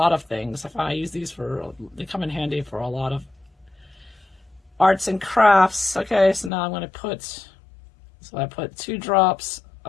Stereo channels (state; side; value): drops out; right; at 6.5 s